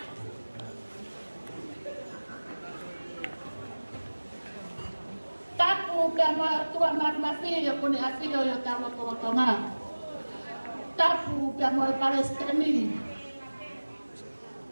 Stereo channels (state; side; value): inverted; both; correlation -1.00